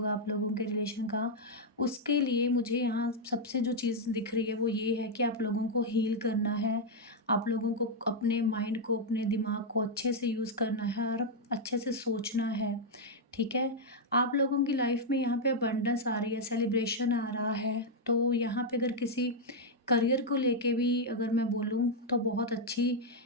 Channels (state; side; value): normal; both; correlation -0.02